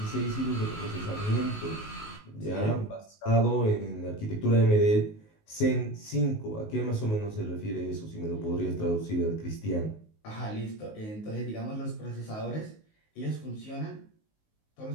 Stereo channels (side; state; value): right; late; 19 ms